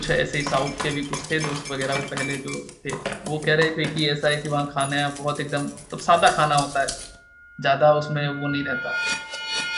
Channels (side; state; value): both; identical; correlation 1.00